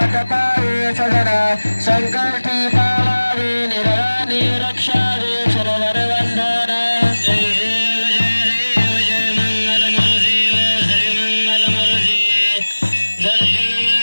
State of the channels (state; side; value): inverted; both; correlation -1.00